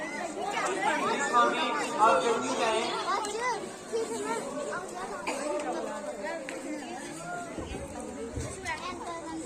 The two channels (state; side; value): identical; both; correlation 1.00